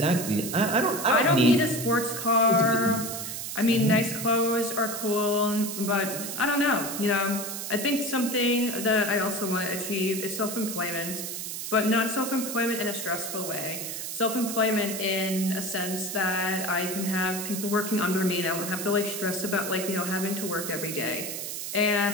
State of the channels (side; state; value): right; noise; hiss, 6 dB below the sound